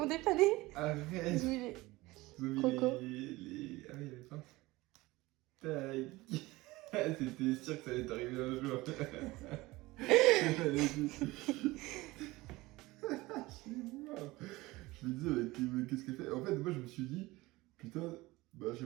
dépanné. Arrête. Ils ont mis les... Ils ont mis Croco. les... Ah oui, les phares. Tac. C'était sûr que ça allait t'arriver un jour. Je me disais, mais qu'est-ce qu'elle fait? En fait, moi, je me suis dit, putain, bah, j'ai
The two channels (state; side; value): quieter; left; 20.2 dB